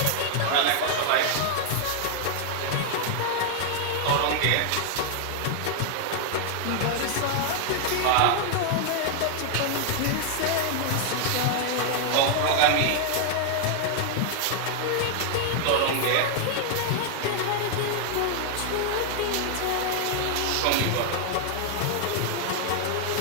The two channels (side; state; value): both; different; correlation 0.00